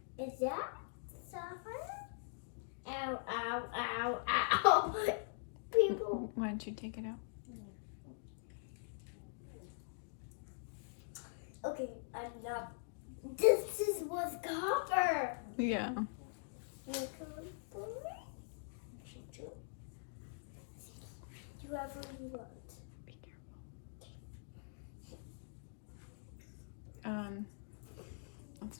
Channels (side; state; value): right; silent; digital silence